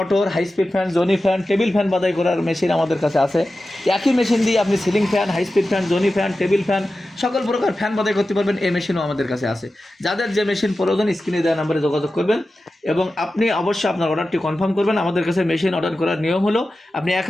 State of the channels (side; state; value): both; normal; correlation 0.93